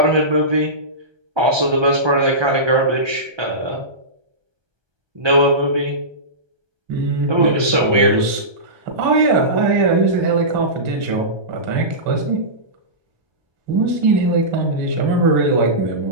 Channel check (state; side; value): late; left; 1.2 ms